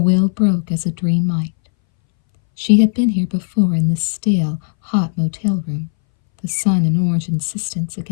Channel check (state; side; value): silent; right; 64 dB below the other